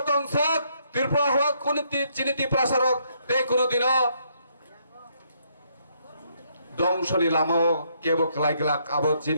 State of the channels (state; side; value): inverted; both; correlation -0.72